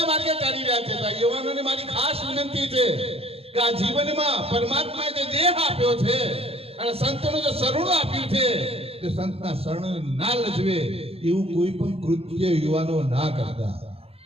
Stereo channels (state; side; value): late; left; 0.28 ms